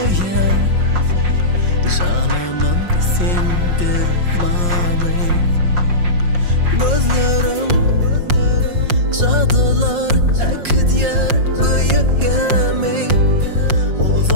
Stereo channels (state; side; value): late; left; 5.6 ms